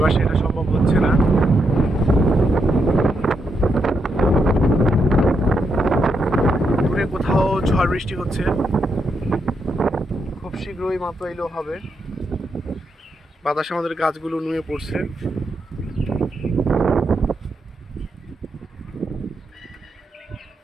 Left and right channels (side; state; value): both; normal; correlation 0.81